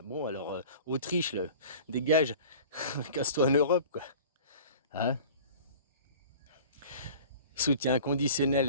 Bon, alors, Autriche, là, dégage, casse-toi en Europe, quoi. Hein? Soutien inconditionnel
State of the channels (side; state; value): both; inverted; correlation -0.43